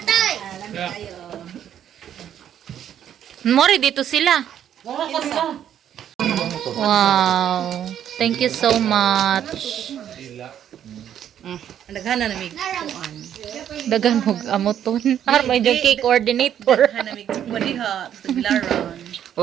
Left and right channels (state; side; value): quieter; left; 10.0 dB